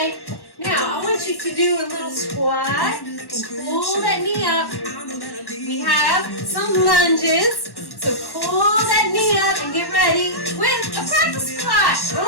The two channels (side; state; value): right; late; 1.1 ms